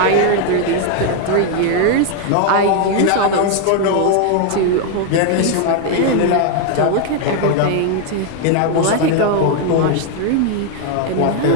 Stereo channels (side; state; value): both; different; correlation 0.00